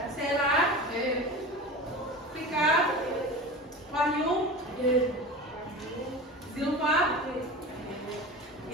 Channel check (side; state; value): both; normal; correlation 0.31